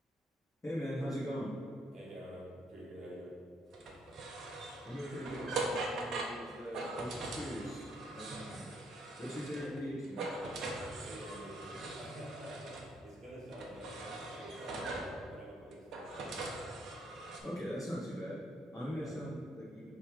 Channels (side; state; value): both; normal; correlation 0.71